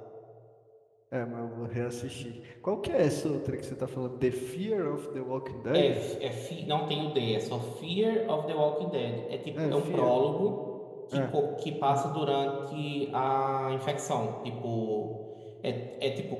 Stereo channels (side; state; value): both; identical; correlation 1.00